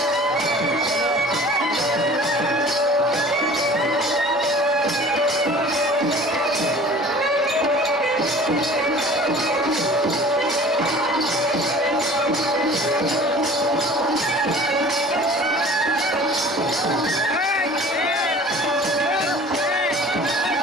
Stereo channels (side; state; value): both; normal; correlation 0.45